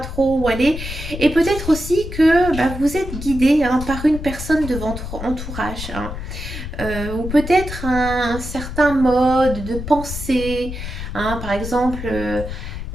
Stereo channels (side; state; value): left; noise; rumble, 8 dB below the sound